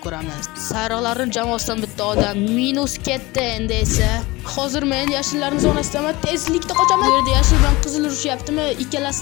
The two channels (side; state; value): right; quieter; 21.7 dB